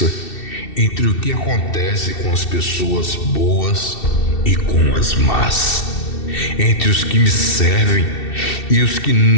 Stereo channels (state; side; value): late; right; 2.7 ms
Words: entre o que acontece com as pessoas boas e com as más, entre os que me servem e os que